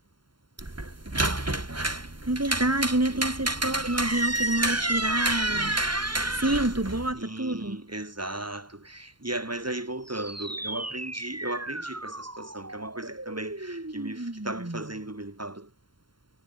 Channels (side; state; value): left; late; 0.72 ms